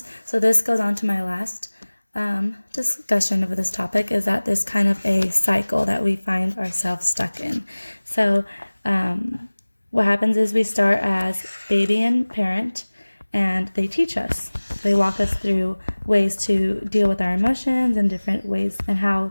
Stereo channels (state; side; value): inverted; both; correlation -1.00